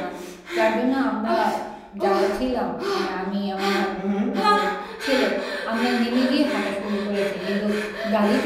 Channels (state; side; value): identical; both; correlation 1.00